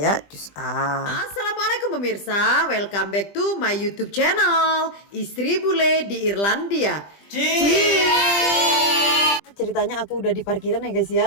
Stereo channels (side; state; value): right; late; 20 ms